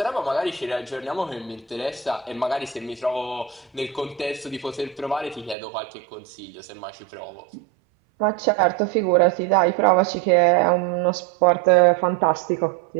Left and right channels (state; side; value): drops out; left; at 5.6 s